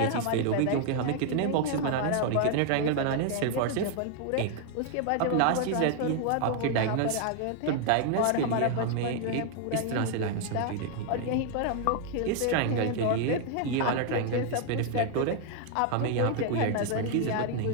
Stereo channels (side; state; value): both; different; correlation 0.00